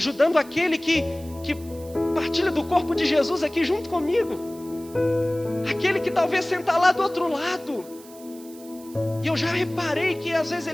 aquele que partilha do corpo de Jesus aqui junto comigo? Aquele que talvez senta lá do outro lado. E eu já reparei que às vezes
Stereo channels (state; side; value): noise; right; hiss, 21 dB below the sound